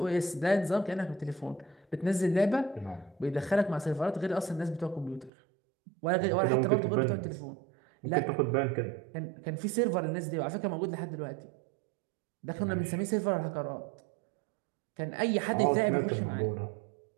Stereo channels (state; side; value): drops out; left; at 5.3 s